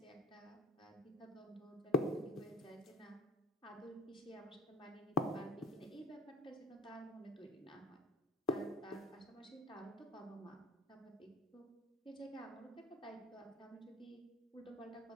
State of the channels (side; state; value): both; normal; correlation 0.44